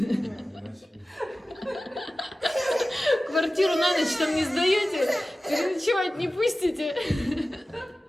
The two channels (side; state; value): both; normal; correlation 0.96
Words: Квартиру на ночь там не сдаете? Переночевать не пустите?